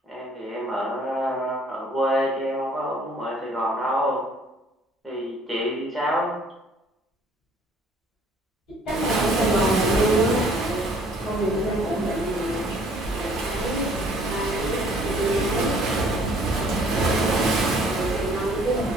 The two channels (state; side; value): normal; both; correlation 0.57